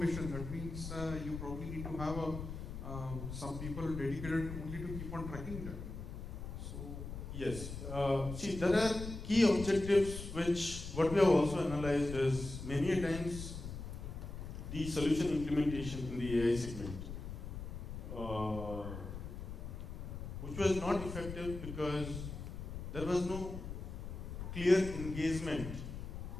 that means you probably need to have some people dedicated only to keep on tracking them. So Yes. See, there are key objectives which, what we have also analyzed is, many times the solution implementation in the AI segment, which was not effective because there was no clear engagement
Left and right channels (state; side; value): noise; left; rumble, 8 dB below the sound